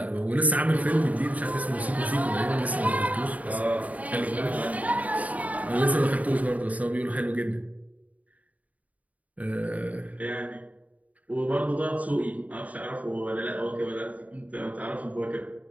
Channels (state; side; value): late; left; 0.071 ms